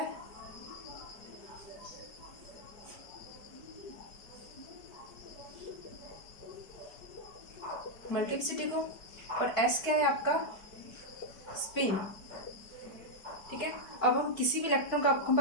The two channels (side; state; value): right; late; 4.6 ms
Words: मल्टीप्लिसिटी को, और s क्या है आपका? स्पिन। ठीक है, अब हम किसी भी इलेक्ट्रॉन का, आपको